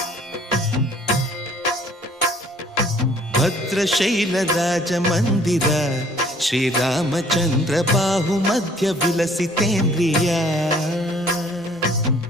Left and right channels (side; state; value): both; normal; correlation 0.57